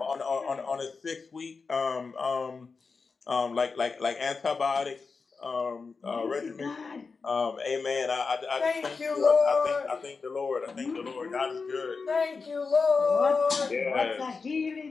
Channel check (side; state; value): right; quieter; 4.7 dB